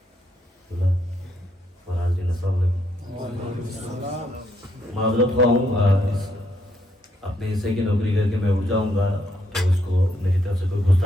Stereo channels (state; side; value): normal; both; correlation 0.75